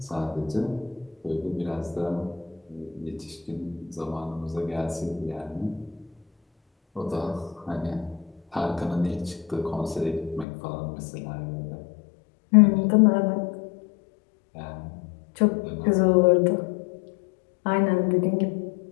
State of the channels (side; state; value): right; drops out; at 10.5 s